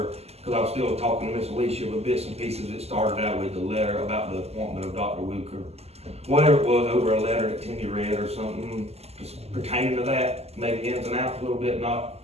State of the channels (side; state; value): left; late; 0.30 ms